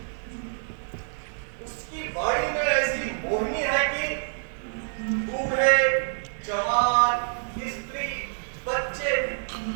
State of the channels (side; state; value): left; silent; digital silence